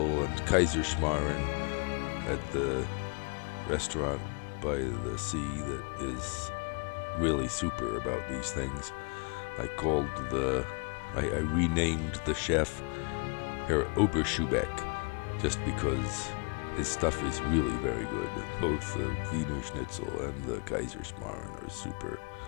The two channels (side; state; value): right; quieter; 34.5 dB